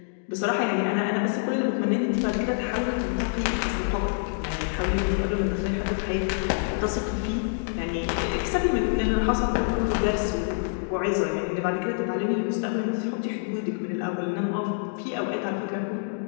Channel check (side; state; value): right; silent; digital silence